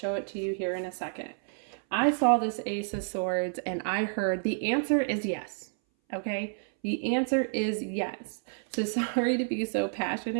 it to you here in a second, I saw this Ace of Swords and I heard the answer is yes. Okay, the answer is yes. So sorry to be so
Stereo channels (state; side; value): silent; left; 58 dB below the other